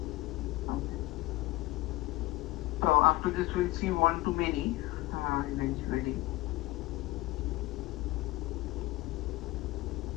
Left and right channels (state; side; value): quieter; right; 19.1 dB